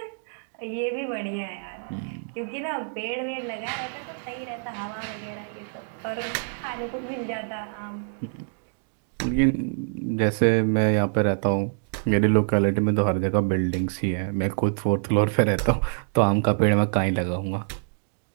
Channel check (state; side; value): silent; left; digital silence